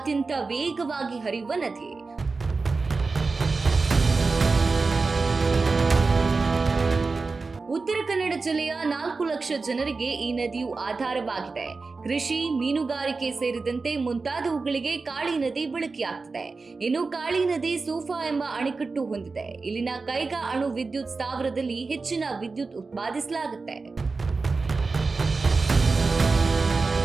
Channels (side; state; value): left; quieter; 4.1 dB